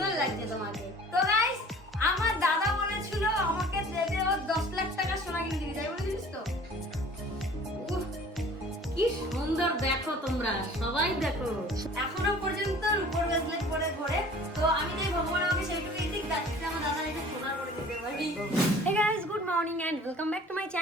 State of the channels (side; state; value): both; normal; correlation 0.48